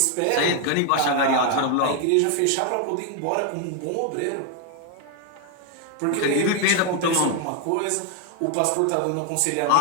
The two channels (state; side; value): different; both; correlation 0.01